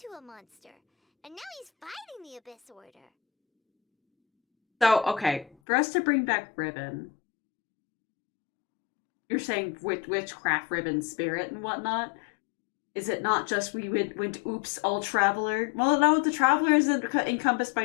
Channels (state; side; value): drops out; right; at 5.6 s